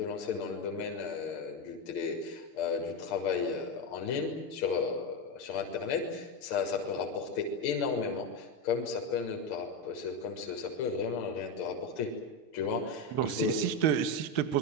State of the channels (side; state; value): right; late; 6.6 ms